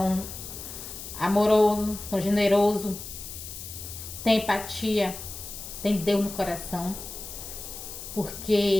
amorosos, são generosos, tem empatia, tem Deus no coração.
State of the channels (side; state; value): left; noise; hiss, 10 dB below the sound